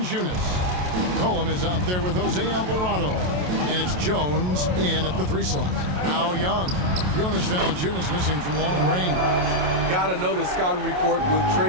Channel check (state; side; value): late; left; 27 ms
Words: Cohen is out there with Jose Alvarado. And it's Jones in at the 3 slot. Now Young. Jonas Valanciunas missing from long range. Got to know the scouting report with